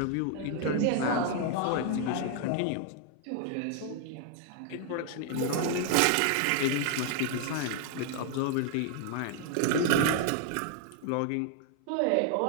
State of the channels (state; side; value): different; both; correlation 0.00